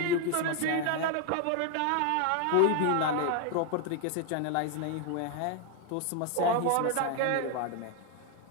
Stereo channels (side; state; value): both; different; correlation 0.01